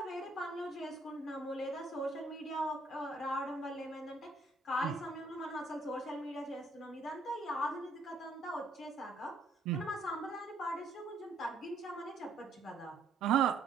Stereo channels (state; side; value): quieter; left; 3.0 dB